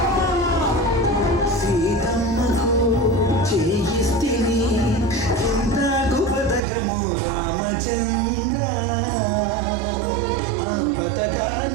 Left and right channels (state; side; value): drops out; left; at 6.6 s